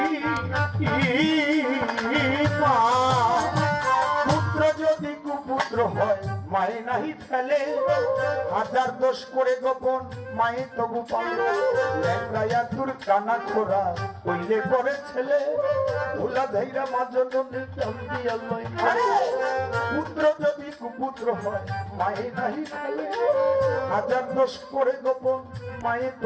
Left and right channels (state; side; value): identical; both; correlation 1.00